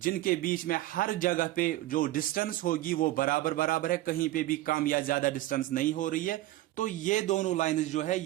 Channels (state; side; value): quieter; left; 16.0 dB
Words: बीच में हर जगह पे जो डिस्टेंस होगी वो बराबर बराबर है, कहीं पे भी कम या ज्यादा डिस्टेंस नहीं हो रही है, तो ये दोनों लाइंस जो है